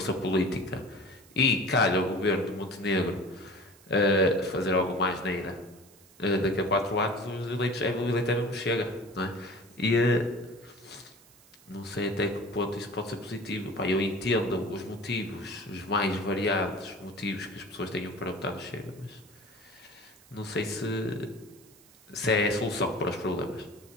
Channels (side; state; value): right; noise; hiss, 26 dB below the sound